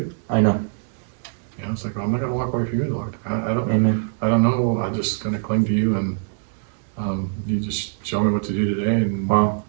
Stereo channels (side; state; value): left; silent; digital silence